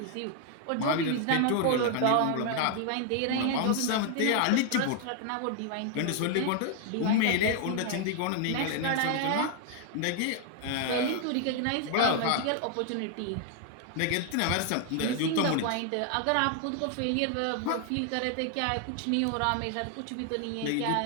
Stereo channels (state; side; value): different; both; correlation 0.00